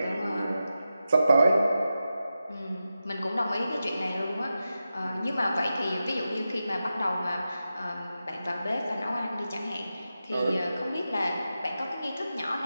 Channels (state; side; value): inverted; both; correlation -0.91